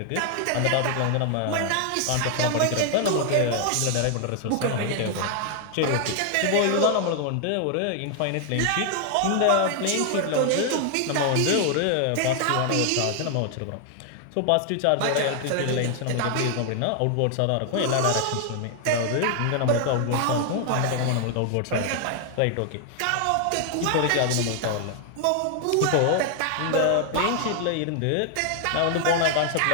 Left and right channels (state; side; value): different; both; correlation 0.00